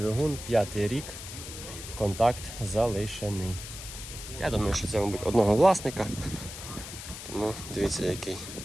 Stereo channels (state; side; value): noise; left; hiss, 11 dB below the sound